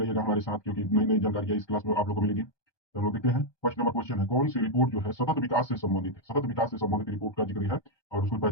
हमारे साथ, क्योंकि नई नई जानकारियां इस क्लास में आप लोगों को मिलेगी। तो हम लोग देखते हैं। फर्स्ट नंबर क्वेश्चन है, कौन सी रिपोर्ट जो है सतत विकास से संबंधित है? सतत विकास से संबंधित रिपोर्ट का जिक्र है और उसको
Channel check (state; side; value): late; right; 1.2 ms